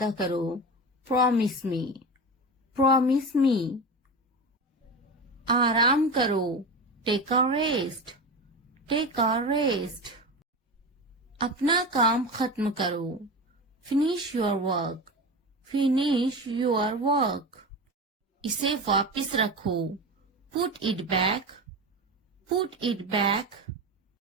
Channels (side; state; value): both; normal; correlation 0.25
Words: करो, प्रॉमिस मी, प्रॉमिस मी। आराम करो, take a rest, take a rest. अपना काम खत्म करो, finish your work, finish your work. इसे वापस रखो, put it back, put it back.